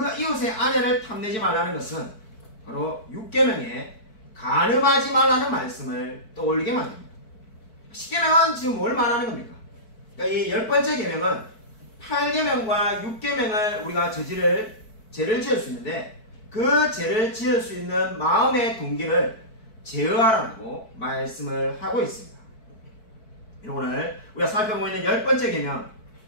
이웃의 아내를 탐내지 말라는 것은 바로 6계명에 간음하지 말라는 말씀을 떠올리게 만듭니다. 10계명은 지금 뭘 말하는 겁니까? 그러니까 이 10번째 계명은 8계명과 6계명을 우리가 죄를 지을 수 있는데 그 죄를 지을 수 있는 마음의 동기를 제어하라고 말씀을 하고 있습니다. 오늘 우리가 살펴보고 있는 10번째 계명,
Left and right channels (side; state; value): right; late; 4.6 ms